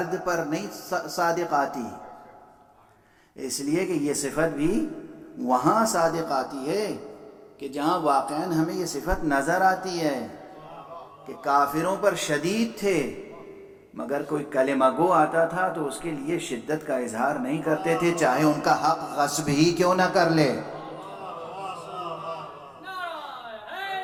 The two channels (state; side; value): identical; both; correlation 1.00